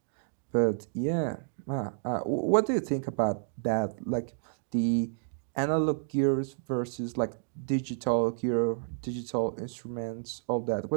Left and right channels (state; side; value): silent; left; digital silence